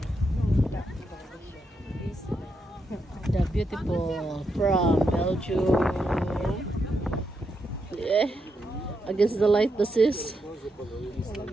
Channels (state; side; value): normal; both; correlation 0.82